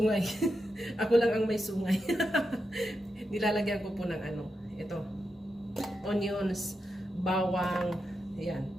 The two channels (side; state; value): both; normal; correlation 0.87